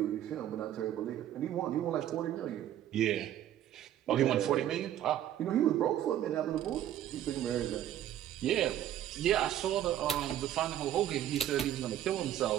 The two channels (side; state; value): left; quieter; 11.6 dB